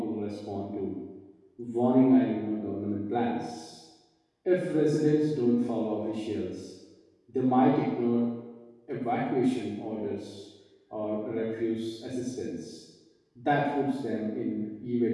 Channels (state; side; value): identical; both; correlation 1.00